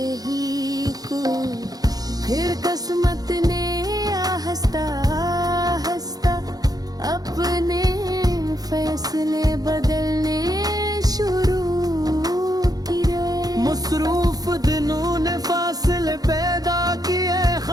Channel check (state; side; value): late; left; 0.18 ms